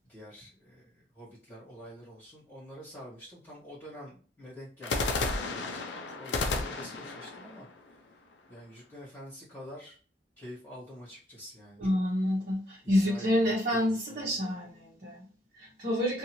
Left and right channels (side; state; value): both; normal; correlation 0.65